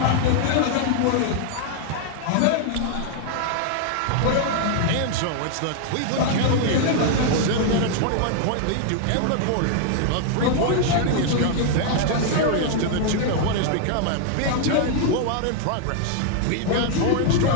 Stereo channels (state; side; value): different; both; correlation 0.00